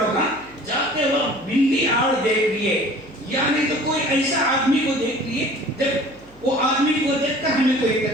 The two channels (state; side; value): noise; right; hum, 26 dB below the sound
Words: جاتے وقت بلی آڑ دیکھ لیے، یعنی تو کوئی ایسا آدمی کو دیکھ لیے، جب وہ آدمی کو دیکھ کر ہمیں کوئی